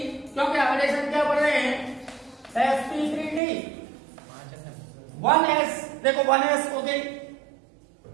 क्योंकि हाइड्रेशन क्या पढ़ रहे हैं, sp3d 1s, देखो 1s हो गई,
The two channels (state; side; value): drops out; left; at 3.4 s